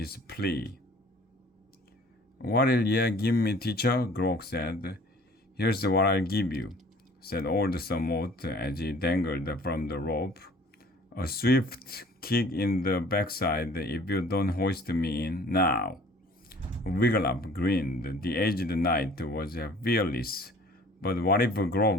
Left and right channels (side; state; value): both; normal; correlation 0.50